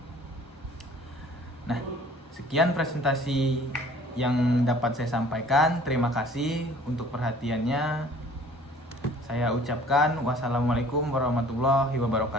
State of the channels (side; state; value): both; normal; correlation 0.51